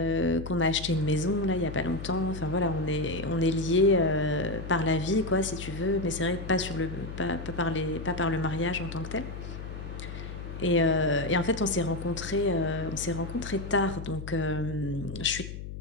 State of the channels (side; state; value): left; noise; hum, 9 dB below the sound